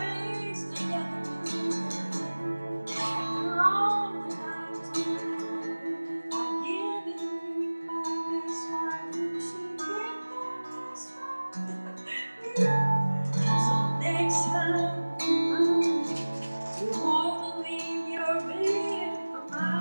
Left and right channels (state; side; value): inverted; both; correlation -1.00